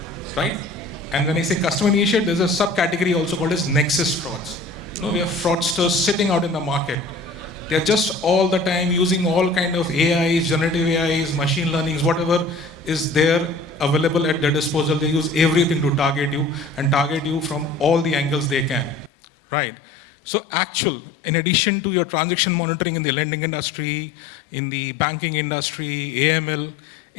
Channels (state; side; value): drops out; right; at 19.1 s